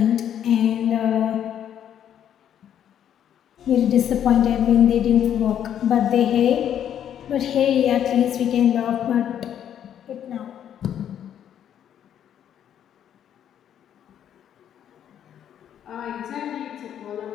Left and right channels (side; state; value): right; quieter; 9.8 dB